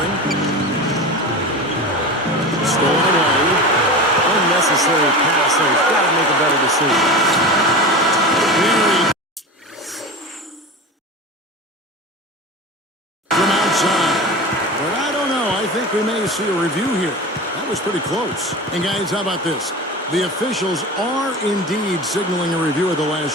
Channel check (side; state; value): both; normal; correlation 0.29